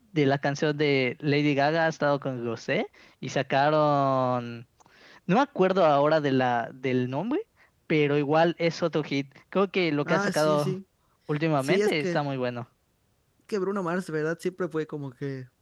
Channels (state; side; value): identical; both; correlation 1.00